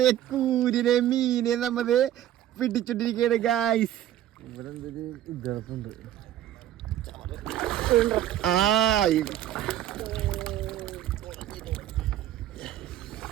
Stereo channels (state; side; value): quieter; left; 12.2 dB